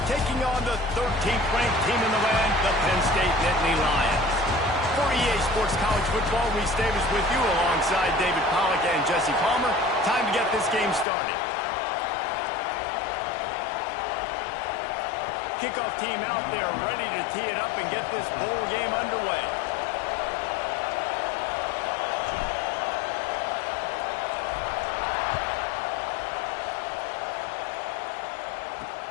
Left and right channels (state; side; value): drops out; right; at 11.1 s